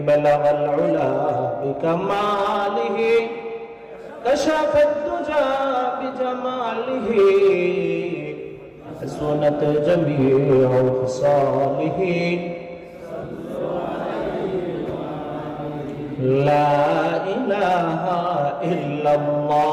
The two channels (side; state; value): both; identical; correlation 1.00